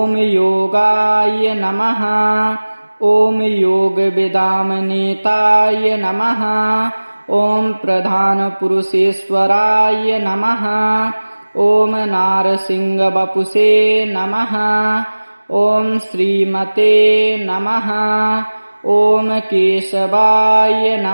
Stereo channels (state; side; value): inverted; both; correlation -1.00